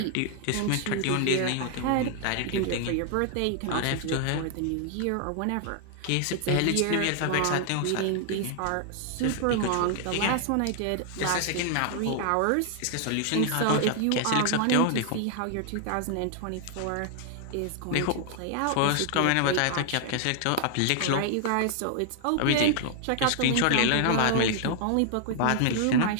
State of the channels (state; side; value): different; both; correlation 0.00